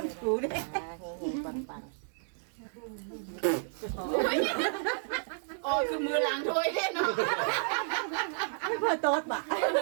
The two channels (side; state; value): left; silent; digital silence